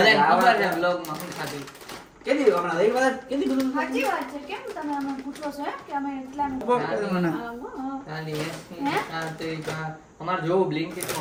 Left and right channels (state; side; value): identical; both; correlation 1.00